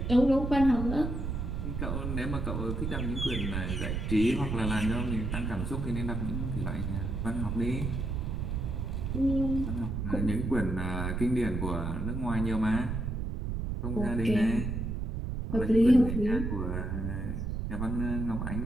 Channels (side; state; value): right; noise; rumble, 2 dB below the sound